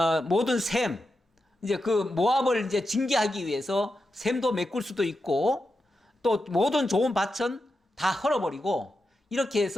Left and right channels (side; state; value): both; normal; correlation 0.88